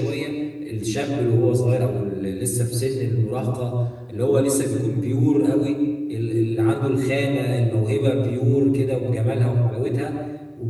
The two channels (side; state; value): both; identical; correlation 1.00